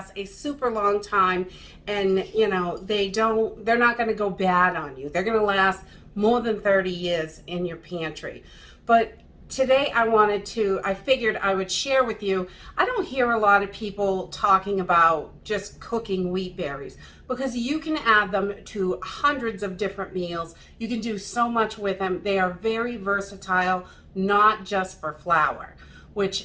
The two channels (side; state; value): both; identical; correlation 1.00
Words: a super long time, and you know, they're not going to go bad on you. They're going to last more than 30 years in your pantry. But today I figured I would share with you, I don't hear a lot of people talking about just cooking wheat berries, because you can add them to hundreds of different meals. You can do so much with them. They are very versatile, not just for flour,